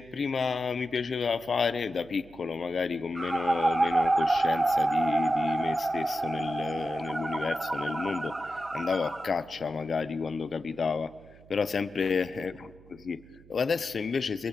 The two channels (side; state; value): right; noise; hum, 24 dB below the sound